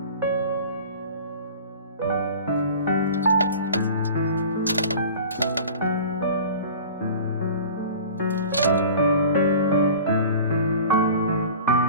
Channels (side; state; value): both; inverted; correlation -0.40